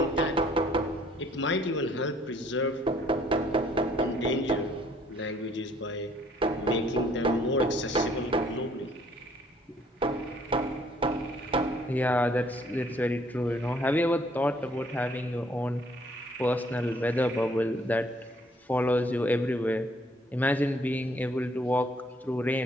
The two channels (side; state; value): both; normal; correlation 0.63